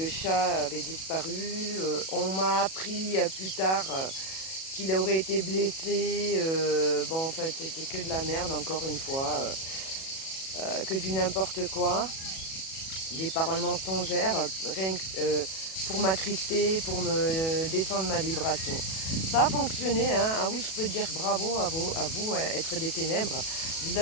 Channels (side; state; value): right; late; 37 ms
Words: chat avait disparu. On m'a appris plus tard qu'il aurait été blessé. Bon, enfin, c'était que de la merde, encore une fois, que du n'importe quoi. Des paroles mensongères, rien que pour m'attrister, pour me descendre ma vibration. Ça a fonctionné, hein. Ah oui, je peux dire bravo à vous, être des ténèbres. Vous